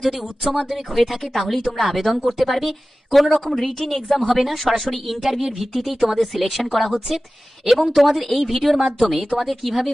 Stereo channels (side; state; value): both; normal; correlation 0.96